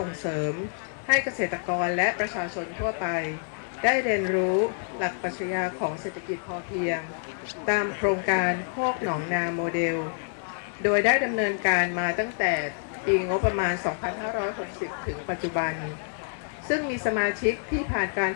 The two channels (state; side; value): silent; right; digital silence